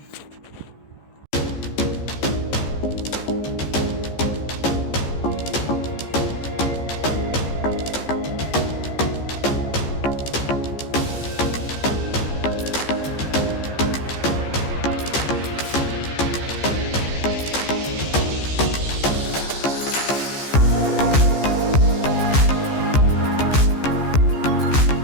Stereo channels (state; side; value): late; right; 15 ms